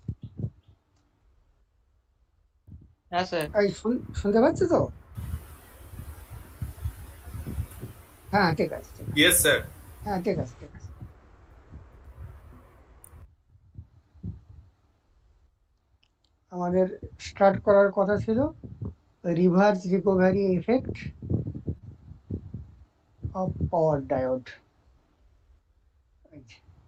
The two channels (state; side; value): identical; both; correlation 1.00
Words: হ্যাঁ স্যার। এই শুনতে পাচ্ছ তো? হ্যাঁ ঠিক আছে, ঠিক আছে। Yes, sir. হ্যাঁ ঠিক আছে, ঠিক আছে। আমাদের স্টার্ট করার কথা ছিল reverse recovery effect of power diode.